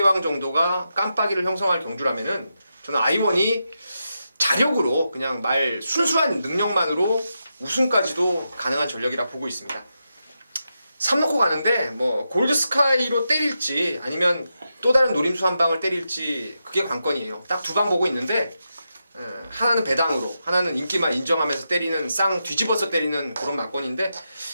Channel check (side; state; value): both; inverted; correlation -0.87